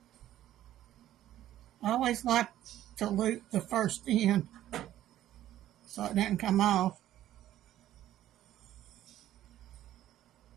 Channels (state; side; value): quieter; left; 12.9 dB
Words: I always like to loop the first end so it doesn't come off.